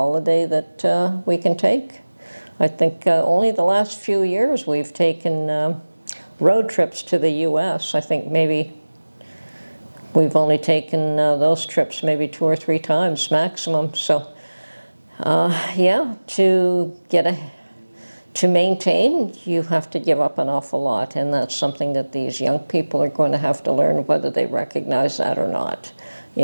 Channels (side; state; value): both; inverted; correlation -1.00